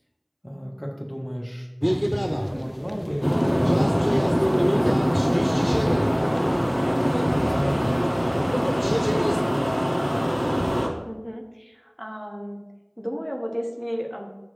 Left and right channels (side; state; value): both; identical; correlation 1.00